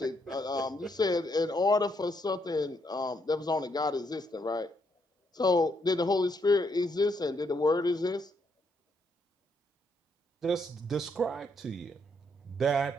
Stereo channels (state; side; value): normal; both; correlation 0.75